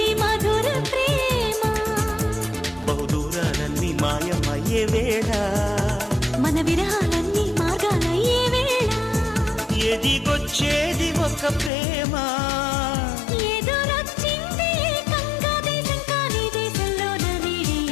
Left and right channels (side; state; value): right; drops out; at 11.7 s